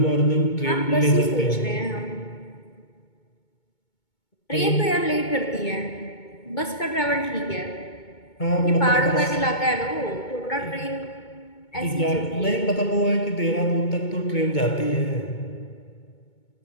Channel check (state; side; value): late; right; 2.2 ms